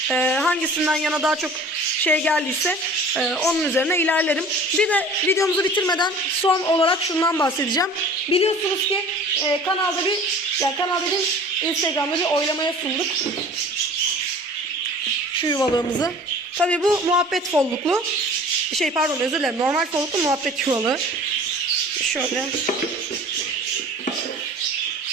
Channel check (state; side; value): normal; both; correlation 0.45